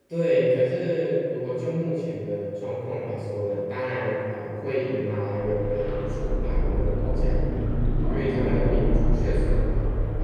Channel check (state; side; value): identical; both; correlation 1.00